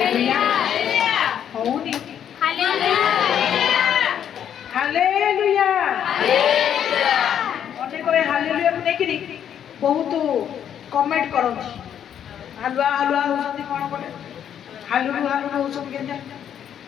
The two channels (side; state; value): right; quieter; 9.3 dB